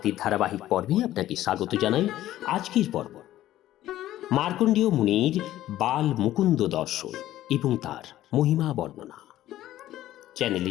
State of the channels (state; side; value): quieter; right; 13.9 dB